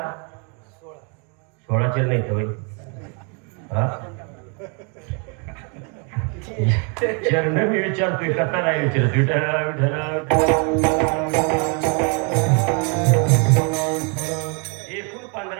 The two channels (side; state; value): left; quieter; 36.7 dB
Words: 16 चरण आहेत होय. चरण मी विचारतोय, कथा नाही विचारत. विठ्ठल विठ्ठल. एकूण